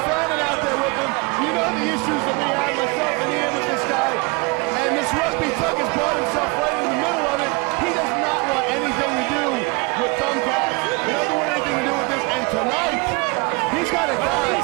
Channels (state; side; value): quieter; left; 29.8 dB